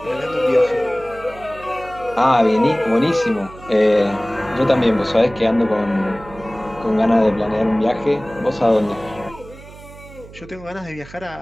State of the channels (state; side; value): noise; right; hum, 18 dB below the sound